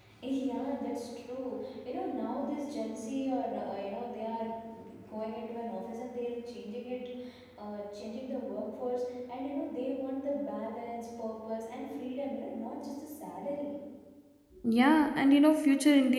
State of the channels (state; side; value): identical; both; correlation 1.00